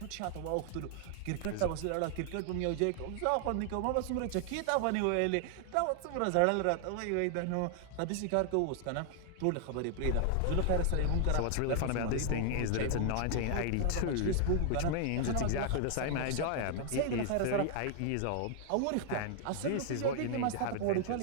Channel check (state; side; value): different; both; correlation 0.00